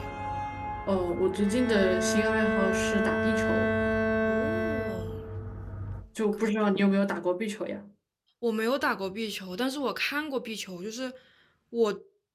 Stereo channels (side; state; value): both; identical; correlation 1.00